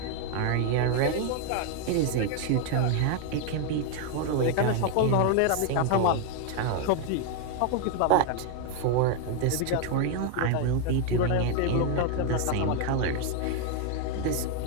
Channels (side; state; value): both; different; correlation 0.01